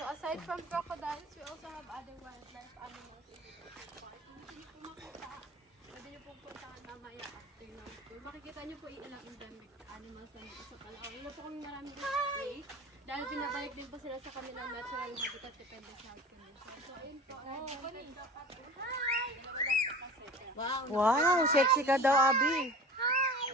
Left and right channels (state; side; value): normal; both; correlation 0.38